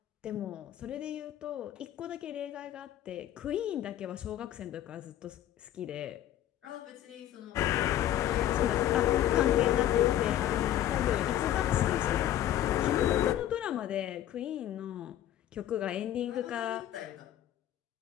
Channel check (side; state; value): right; quieter; 12.1 dB